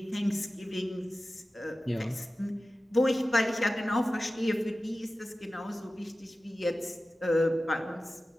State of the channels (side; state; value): both; normal; correlation 0.95